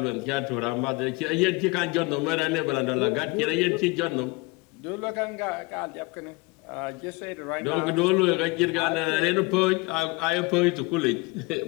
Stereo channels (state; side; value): quieter; right; 25.9 dB